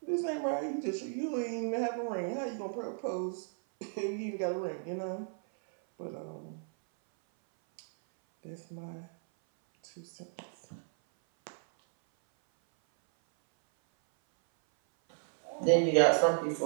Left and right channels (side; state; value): left; silent; 55 dB below the other